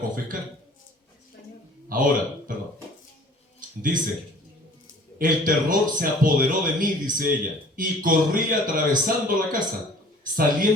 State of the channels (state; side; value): normal; both; correlation 0.49